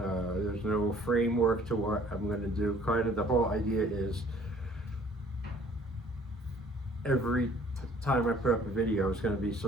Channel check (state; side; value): normal; both; correlation 0.56